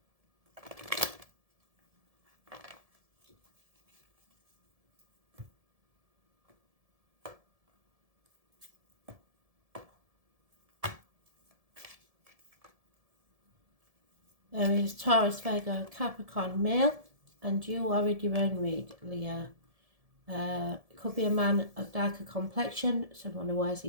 There is Taurus, Virgo, Capricorn, male, and you are in your own read, Leo. It could be a man of darker complexion, someone who wears a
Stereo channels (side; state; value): left; late; 1.7 ms